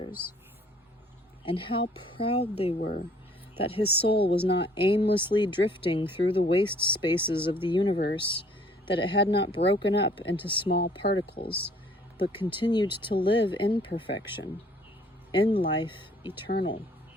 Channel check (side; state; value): both; normal; correlation 0.58